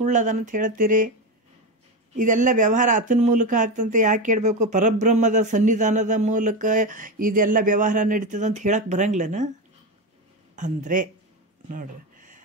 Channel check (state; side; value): normal; both; correlation 0.16